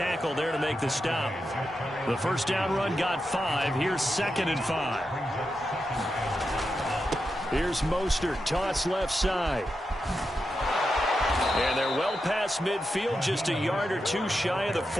there to make the stop. The first down run got 5. Here's 2nd and 5. Here's Mostert, toss left side. And they're well past midfield, just a yard or two shy of the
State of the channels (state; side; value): normal; both; correlation 0.88